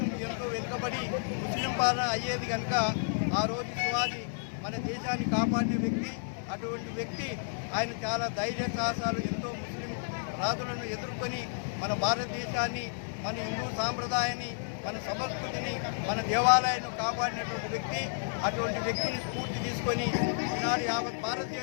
ఎంతో వెనుకబడి ముస్లిం పాలన అయ్యేది కనుక ఆ రోజు శివాజీ మన దేశాన్ని కాపాడిన వ్యక్తి. అటువంటి వ్యక్తి ఆయన చాలా ధైర్య సాహసాలు, ఎంతో ముస్లిం రాజులను ఎదుర్కొని మన భారతదేశాన్ని, మన హిందూ సాంప్రదాయాన్ని, మన సంస్కృతిని, మన దేవాలయాన్ని కాపాడినటువంటి వ్యక్తి. అటువంటి వ్యక్తిని స్ఫూర్తి తీసుకొని ఈనాడు యావత్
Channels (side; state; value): right; silent; digital silence